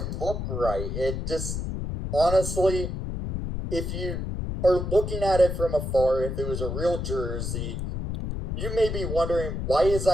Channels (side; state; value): left; noise; rumble, 4 dB below the sound